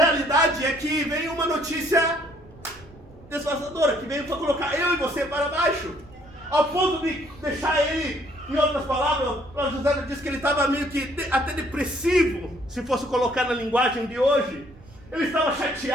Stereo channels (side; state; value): right; noise; rumble, 23 dB below the sound